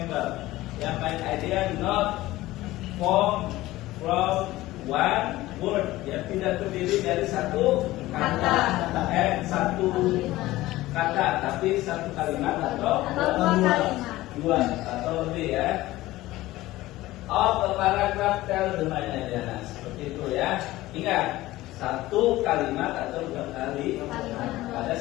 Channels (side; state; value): right; quieter; 17.3 dB